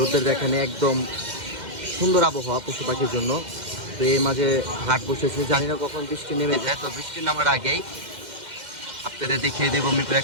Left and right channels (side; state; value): left; late; 2.1 ms